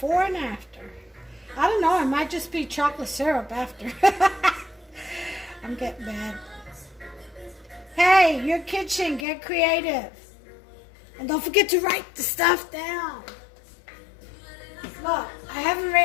and after. I don't know, it might just be chocolate syrup after. I'm getting bad. Hey, your kitchen, get creative. And don't forget to write the stuff down. Look, I haven't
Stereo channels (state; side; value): drops out; right; at 9.2 s